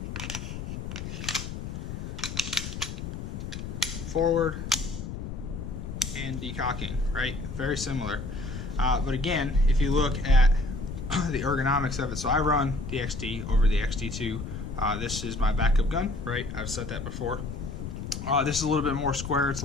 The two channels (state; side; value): noise; left; rumble, 7 dB below the sound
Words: forward, and decocking, right? Very similar. But again, if you look at the ergonomics of it, so I run the XD over the XD2. This is my backup gun, right? I've said that before. This is a little bit more square. It's a